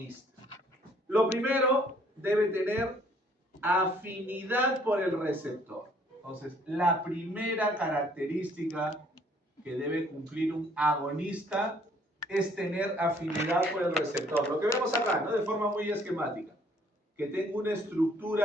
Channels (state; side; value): normal; both; correlation 0.62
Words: Lo primero, debe tener afinidad por el receptor. Entonces, la primera característica que debe cumplir un agonista es tener afinidad por el receptor. Lo que vemos acá, ¿no? De forma muy esquemática. Que tenga una